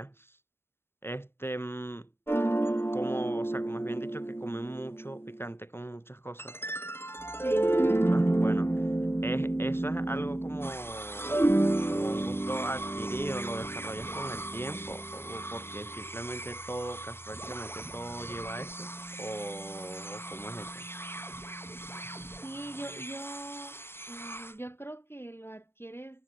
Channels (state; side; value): late; right; 0.11 ms